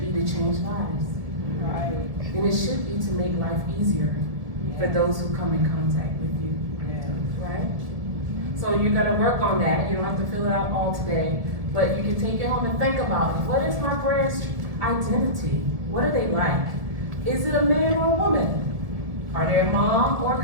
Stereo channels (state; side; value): late; left; 1.9 ms